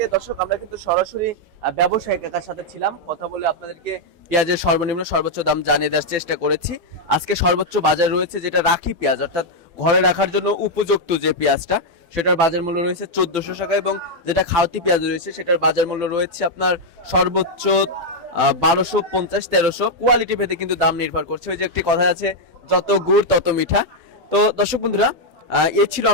দর্শক, আমরা কিন্তু সরাসরি ব্যবসায়ী কাকার সাথে ছিলাম, কথা বলে আপনাদেরকে পেঁয়াজের সর্বনিম্ন সর্বোচ্চ দাম জানিয়ে দেওয়ার চেষ্টা করেছি। আজকে সর্বোচ্চ বাজার রয়েছে যেটা রাখি পেঁয়াজ, অর্থাৎ ঘরে রাখার জন্য উপযুক্ত যে পেঁয়াজটা, সেটার বাজার মূল্য রয়েছে 1400 টাকা, এবং যেটা খাওয়াতি পেঁয়াজ রয়েছে সেটার বাজার মূল্য রয়েছে আপনার সর্বোচ্চ 1250 1300। কোয়ালিটি ভেদে কিন্তু দাম নির্ভর করছে। ওই যে একটি কথা আছে, যত গুড় তত মিঠা। তো দর্শক বন্ধুরা, এ ছিল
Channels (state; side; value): late; left; 12 ms